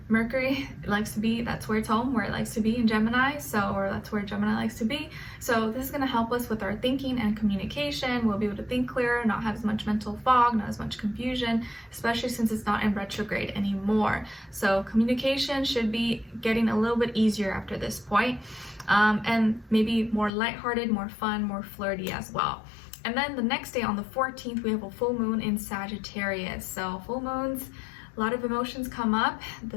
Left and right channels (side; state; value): right; drops out; at 20.3 s